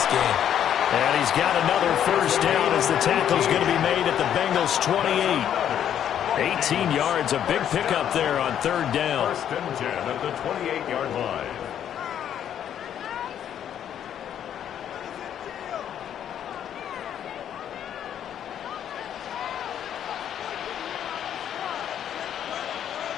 gain. And he's got another first down as the tackle's going to be made at the Bengals' 28. 18 yards, a big pickup there on third down. First and 10 at the 28-yard line.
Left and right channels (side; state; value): right; quieter; 9.8 dB